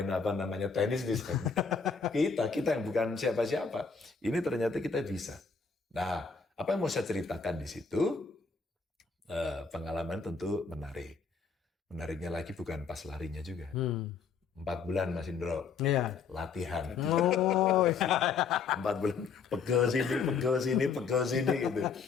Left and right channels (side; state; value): right; quieter; 5.4 dB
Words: tenis bisa? Kita yang bukan siapa-siapa. Ini ternyata kita bisa. Nah, apa yang mau saya ceritakan di situ? Pengalaman tentu menarik. Menariknya lagi bukan pas larinya juga. 4 bulan Mas Indro Iya. latihan. Oh, 4 bulan pegel sini gitu.